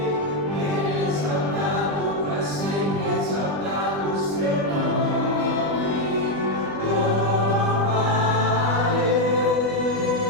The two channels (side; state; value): left; late; 20 ms